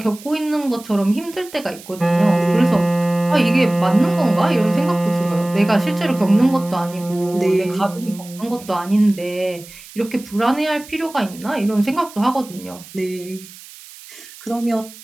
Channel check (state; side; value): noise; right; hiss, 19 dB below the sound